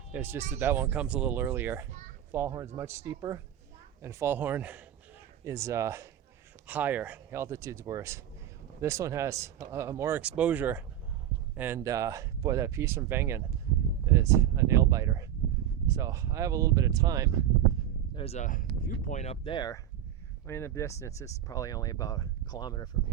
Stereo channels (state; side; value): quieter; left; 10.8 dB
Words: It's just that that one comes a little earlier. Fallhorn is much steeper, and Fallhorn is higher. The altitude's worse. This one has more exposure, and boy, that piece from Wengen is a nail biter. So I have a little bit of time. There's a viewpoint up there. I mean, the distance is probably only about a kilometer from